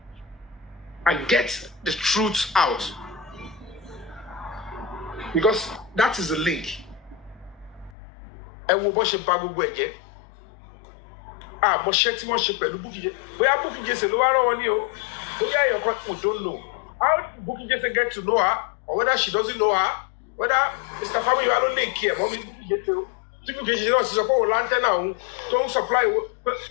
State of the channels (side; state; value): right; drops out; at 8.0 s